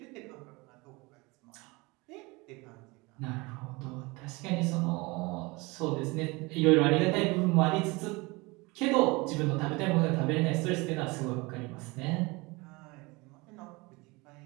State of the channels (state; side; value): quieter; left; 24.8 dB